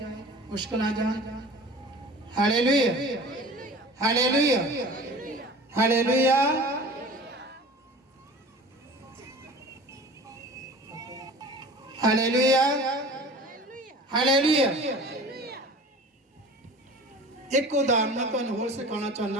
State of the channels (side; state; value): both; normal; correlation 0.41